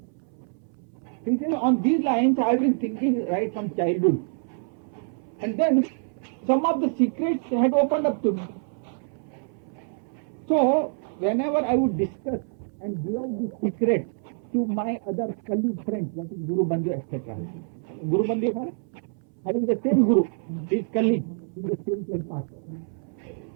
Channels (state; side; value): silent; left; 61 dB below the other